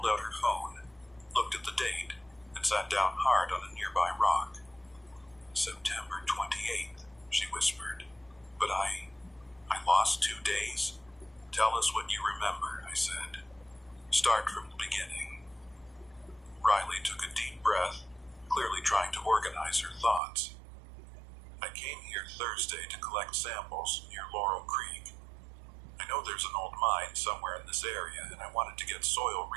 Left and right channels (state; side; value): drops out; left; at 20.2 s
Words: out her phone, looked at the date, and sat down hard on a nearby rock. September 28th, she whispered. But I lost 2 days? Tell us what you remember, I said. Start from the beginning. Riley took a deep breath, clearly trying to organize her thoughts. I came here Thursday to collect samples near Laurel Creek. I know there's an old mine somewhere in this area, and I wanted to get soil